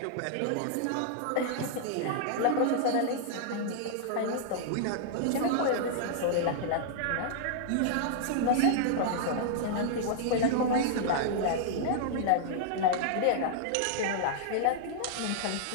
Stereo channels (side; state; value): both; different; correlation -0.01